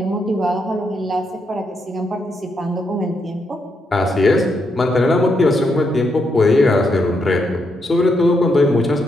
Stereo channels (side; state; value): both; normal; correlation 0.80